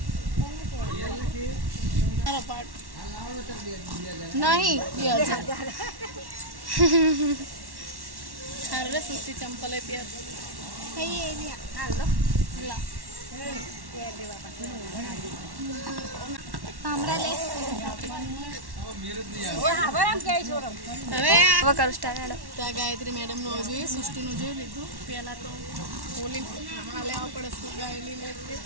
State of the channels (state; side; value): late; left; 1.1 ms